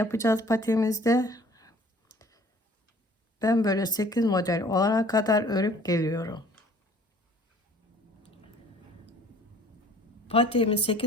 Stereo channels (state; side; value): normal; both; correlation 0.53